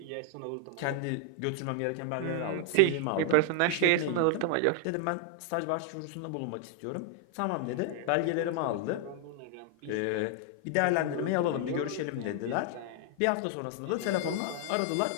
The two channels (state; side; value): different; both; correlation 0.00